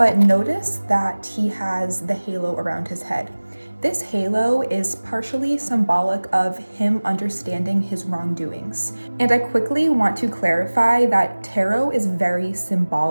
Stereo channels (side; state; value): both; inverted; correlation -1.00